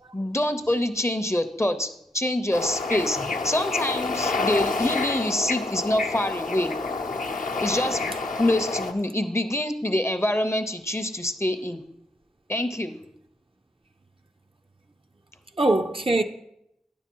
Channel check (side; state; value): both; normal; correlation 0.74